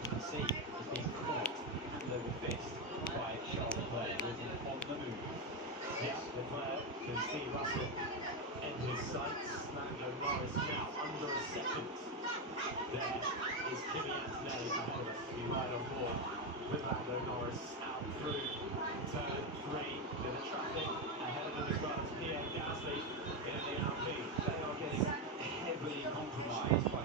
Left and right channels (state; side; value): normal; both; correlation 0.09